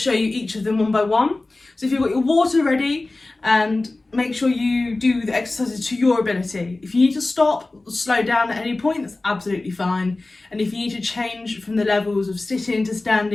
you each of them one by one. So if you've got your water ready, and make sure you do the exercises to your ability. If you need to stop or slow down at any point, that's absolutely fine. And if you need to change from the levels of sitting to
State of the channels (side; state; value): right; quieter; 3.1 dB